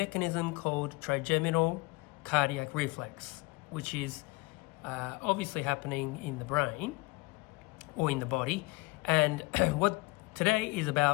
called trigeminal cardiac reflex, which is obviously happening in the brain or in the body, and what today is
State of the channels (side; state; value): right; quieter; 24.1 dB